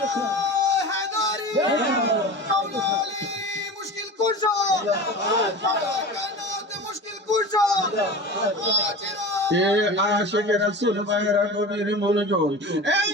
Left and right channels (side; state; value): both; normal; correlation 0.32